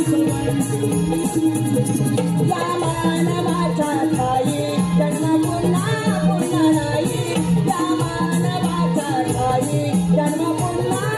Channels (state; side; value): identical; both; correlation 1.00